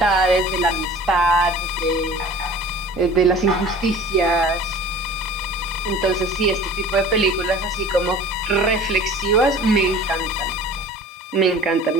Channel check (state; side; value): normal; both; correlation 0.44